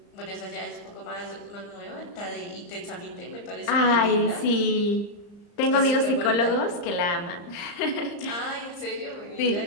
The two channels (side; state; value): right; late; 34 ms